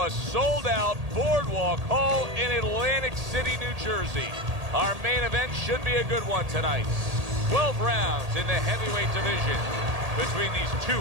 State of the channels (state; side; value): late; left; 1.8 ms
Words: a sold-out Boardwalk Hall in Atlantic City, New Jersey. Our main event should be a good one tonight. 12 rounds in the heavyweight division between these two